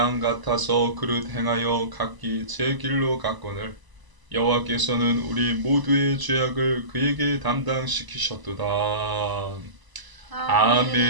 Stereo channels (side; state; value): left; late; 1.0 ms